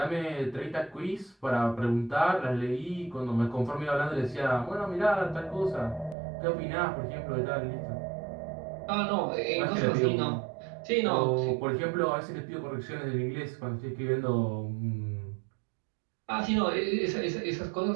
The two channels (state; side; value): drops out; left; at 6.2 s